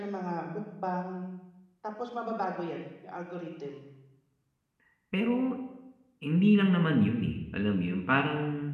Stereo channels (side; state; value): both; identical; correlation 1.00